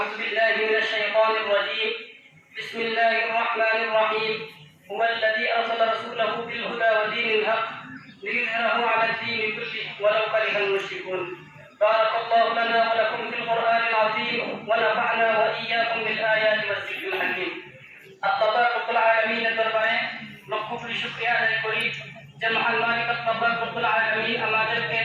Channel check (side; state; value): both; identical; correlation 1.00